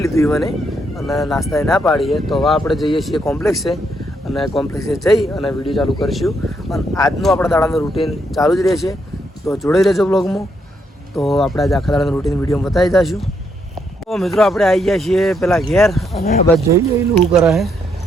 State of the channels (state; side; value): normal; both; correlation 0.76